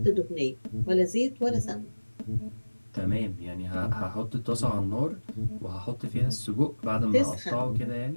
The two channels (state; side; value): inverted; both; correlation -1.00